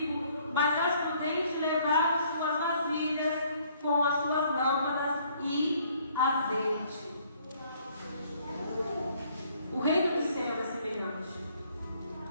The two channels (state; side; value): inverted; both; correlation -0.63